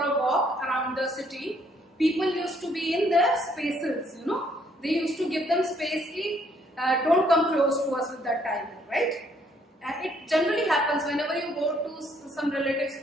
walk around the city, people used to be in their spaces, They used to give them space, don't come close to us with that tiger, right? And it generally happens whenever you go to some relative's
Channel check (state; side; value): normal; both; correlation 0.67